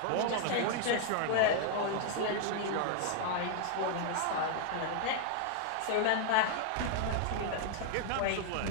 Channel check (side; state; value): both; different; correlation 0.00